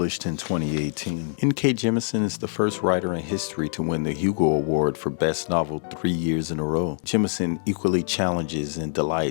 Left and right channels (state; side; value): silent; right; 62 dB below the other